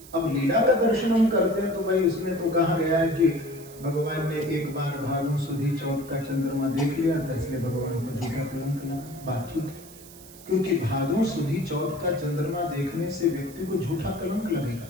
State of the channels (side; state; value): right; noise; hiss, 19 dB below the sound